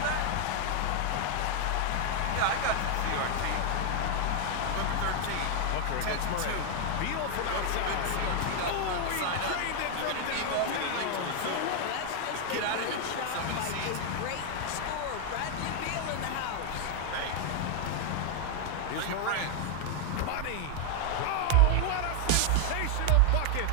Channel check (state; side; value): different; both; correlation 0.00